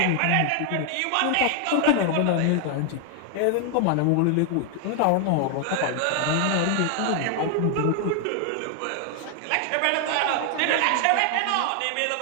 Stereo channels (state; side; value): different; both; correlation 0.00